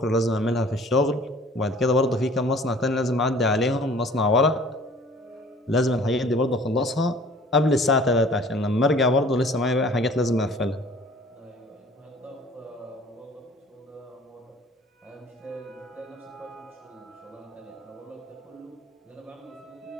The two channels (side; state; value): both; normal; correlation 0.50